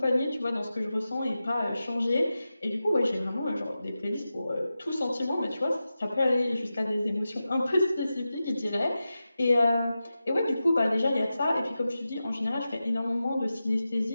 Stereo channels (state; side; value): inverted; both; correlation -0.93